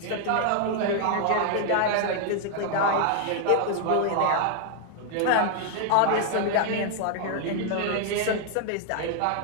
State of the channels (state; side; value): different; both; correlation 0.00